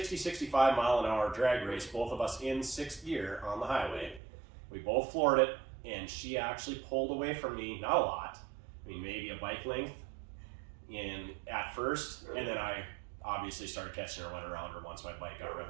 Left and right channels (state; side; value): drops out; left; at 4.2 s